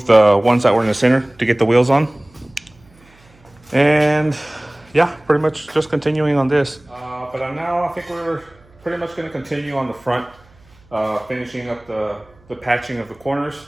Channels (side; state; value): right; noise; hum, 29 dB below the sound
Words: the ones that were in the center to get the wheels on. And yeah, pretty much just continuing on this. But now I think we're pretty much gonna continue on the front, finishing up the patching of the corners.